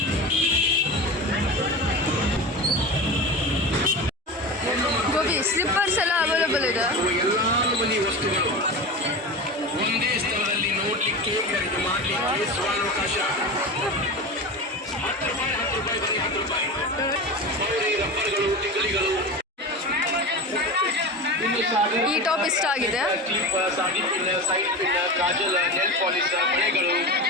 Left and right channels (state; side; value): normal; both; correlation 0.27